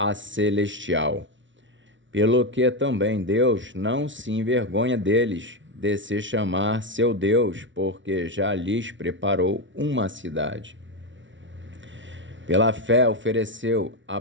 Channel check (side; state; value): left; late; 0.55 ms